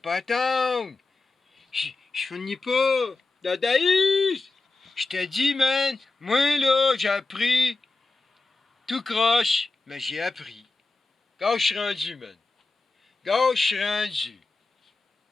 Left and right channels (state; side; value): quieter; right; 3.5 dB